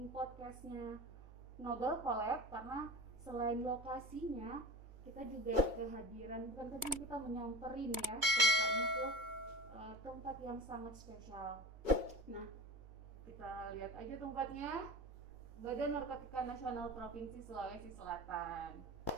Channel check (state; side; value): late; left; 2.2 ms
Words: podcastnya Noble Collab, karena selain lokasinya, kita juga kehadiran, bukan kita menyamperin ya, tempatnya ke tempat yang sangat spesial. Nah, kita lihat aja tempatnya. Badan Narkotika Nasional Provinsi Sulawesi Selatan.